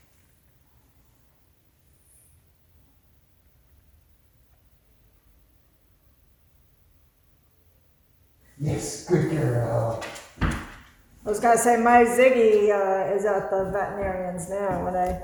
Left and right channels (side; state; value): both; identical; correlation 1.00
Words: Yes, good girl. I was gonna say, my Ziggy is at the veterinarian's now, and